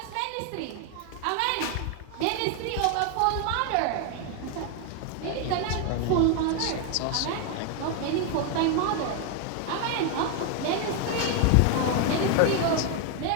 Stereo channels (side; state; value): both; different; correlation 0.01